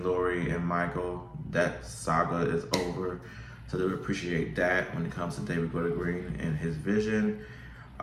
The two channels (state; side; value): identical; both; correlation 1.00